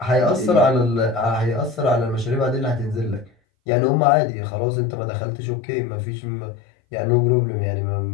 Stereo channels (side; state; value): right; drops out; at 3.3 s